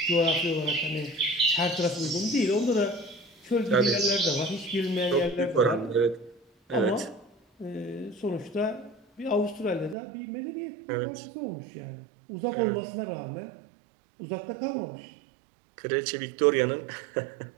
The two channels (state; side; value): drops out; left; at 10.0 s